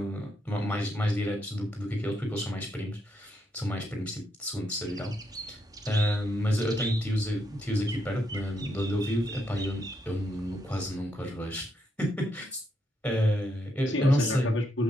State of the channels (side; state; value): both; normal; correlation 0.78